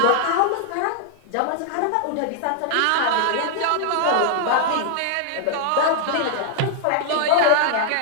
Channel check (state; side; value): different; both; correlation 0.00